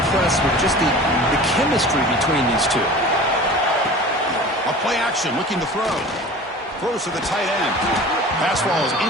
with just the chemistry between these two. A play action, looking to throw. Throws to the tight end. Pass ball is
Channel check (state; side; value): normal; both; correlation 0.39